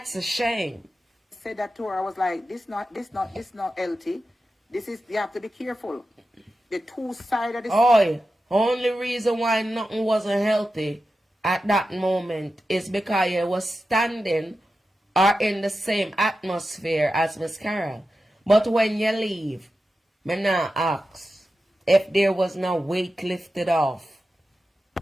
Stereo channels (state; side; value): normal; both; correlation 0.92